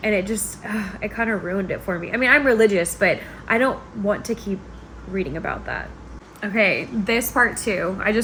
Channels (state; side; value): identical; both; correlation 1.00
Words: And it just, it kind of ruined it for me. I mean, I'm religious, but I don't want to keep reading about that. Okay, this part too, I